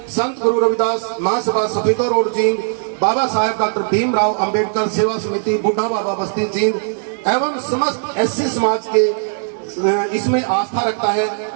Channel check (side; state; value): left; silent; digital silence